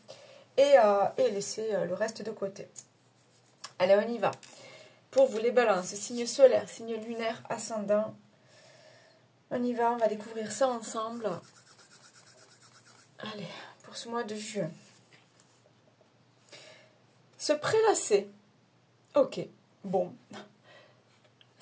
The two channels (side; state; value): both; identical; correlation 1.00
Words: et laissez le reste de côté. Allez, on y va. Pour vous les balances, signe solaire, signe lunaire, ascendant. On y va, on va découvrir ça ensemble. Allez, pour ce mois de juin. Se prélasser. Ok, bon.